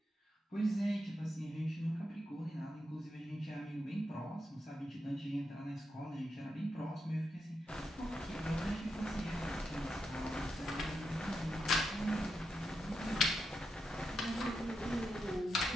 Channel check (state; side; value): normal; both; correlation 0.85